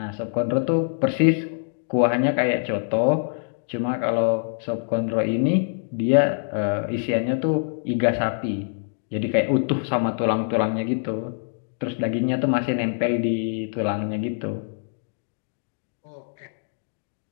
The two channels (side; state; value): right; silent; digital silence